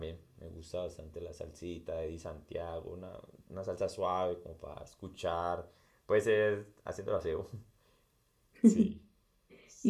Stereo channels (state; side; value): identical; both; correlation 1.00